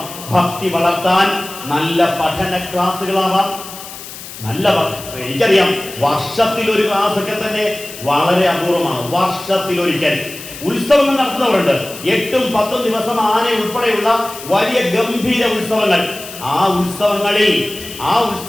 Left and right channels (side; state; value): left; noise; hiss, 13 dB below the sound